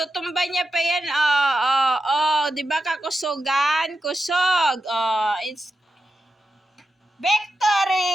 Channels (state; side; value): normal; both; correlation 0.89